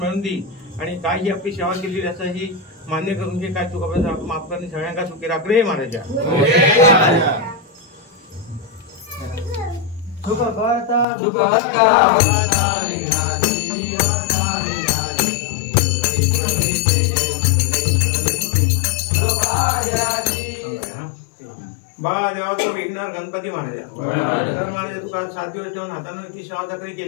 दी. आणि काय ही आपली सेवा केली असं ही मान्य करून घे. काय तू कपडा माफ करणे सगळ्यांना सुखी राख रे महाराजा. जेव्हा तू विघ्नहर गणपती महाराजा तर महाराजा तुका 7 दिवस ठेवून हातानं ती शावजागरी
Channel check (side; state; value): right; drops out; at 11.1 s